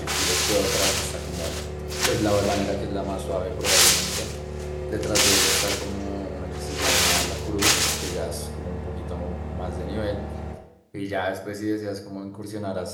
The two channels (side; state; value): both; identical; correlation 1.00